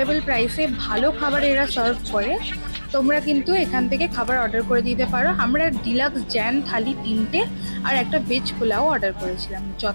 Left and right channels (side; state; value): both; inverted; correlation -1.00